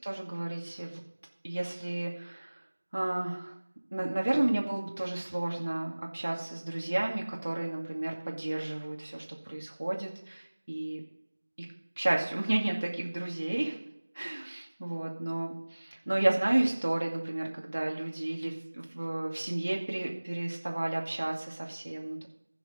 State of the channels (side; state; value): both; inverted; correlation -1.00